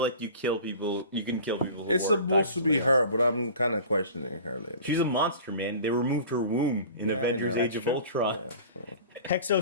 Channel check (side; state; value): both; inverted; correlation -0.41